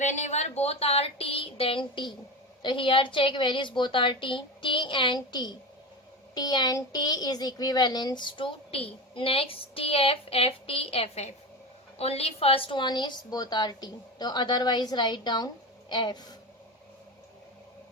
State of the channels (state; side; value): normal; both; correlation 0.23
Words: both are T, then T. So here check where is both are T. T and T. T and T is equivalent to T. Next TF, FT, FF. Only first one is both are T. So otherwise write down F.